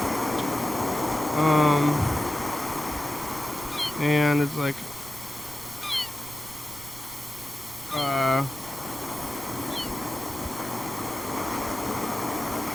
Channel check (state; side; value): noise; right; rumble, 19 dB below the sound